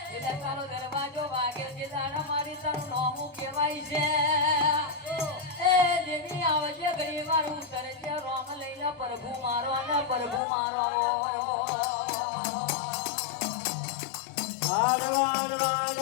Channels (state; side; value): drops out; right; at 10.4 s